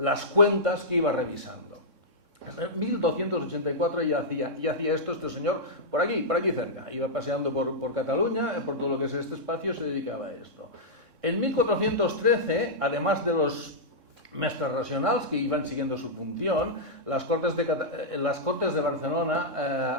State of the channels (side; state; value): left; late; 3.6 ms